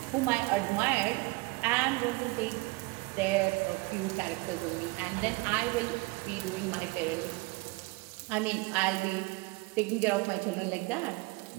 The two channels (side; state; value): left; quieter; 25.3 dB